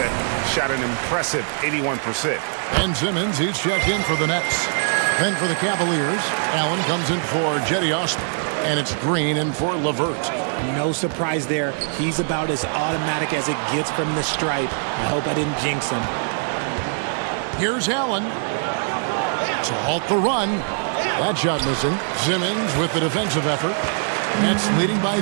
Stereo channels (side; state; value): left; silent; digital silence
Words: shot an impressive 81%. Ben Simmons, he's checked in for the Nets. Then for the Cavaliers, Allen comes in for Jetty Osman. And it's Green in for LeVert. No surprise there. He's about as automatic as it gets from the stripe. I hope I didn't jinx him. Here's Allen to halt the run. That shot missing. Simmons with the defensive effort. Nets leading by